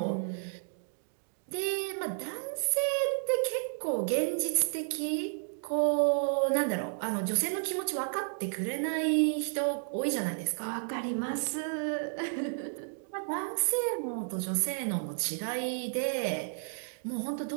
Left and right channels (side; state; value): left; silent; digital silence